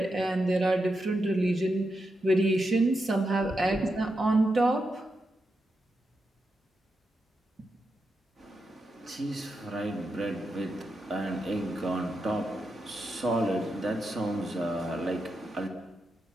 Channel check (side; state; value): both; normal; correlation 0.86